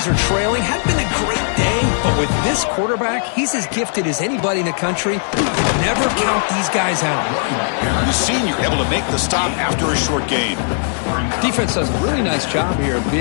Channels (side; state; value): right; silent; 63 dB below the other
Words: are trailing. Hadn't been a great day, but with this quarterback, he's as gifted as anybody in the country. Never count these guys out. The senior able to make the stop after a short gain. Defense does a really nice job here of